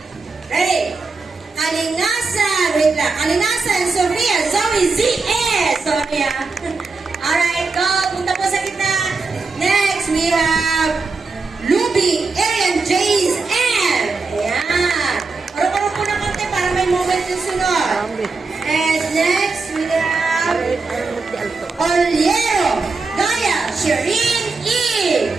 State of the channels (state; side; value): quieter; left; 4.1 dB